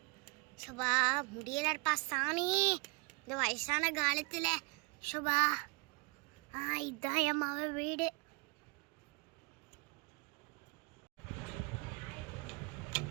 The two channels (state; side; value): quieter; left; 32.1 dB